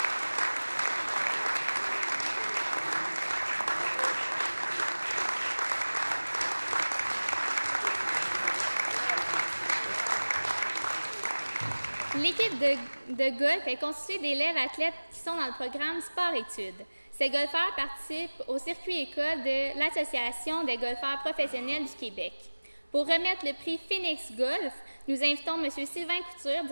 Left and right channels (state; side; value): inverted; both; correlation -1.00